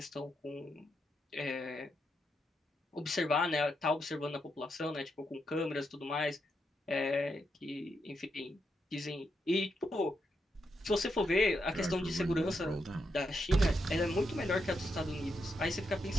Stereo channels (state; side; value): normal; both; correlation 0.82